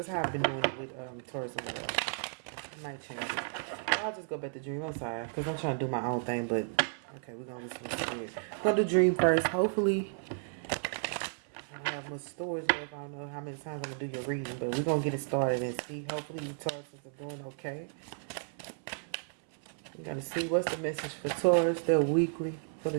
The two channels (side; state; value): left; silent; 55 dB below the other